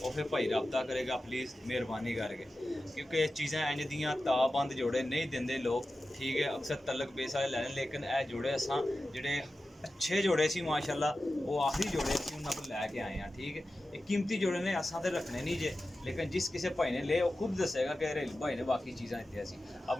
और फिर भाई रब्ता करेगा। प्लीज़ मेहरबानी करके, क्योंकि चीज़ां इंज दियां ताबंद जोड़े नहीं देंगे लोग। ठीक है, अक्सर तलक बेस वाले लैने, लेकिन यह जोड़े असां जेह्ड़े अच्छे जोड़े सी माशाल्लाह, वो आखिरी जोड़े सी उन्होंने को लैके आए हैं। ठीक है, ये कीमती जोड़े ने, असां तो रखने नहीं जे, लेकिन जिस किसी भाई ने ले वो खुद दसेगा कि भाई ने बाकी चीज़ां दित्तियां सी।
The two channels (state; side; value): normal; both; correlation 0.94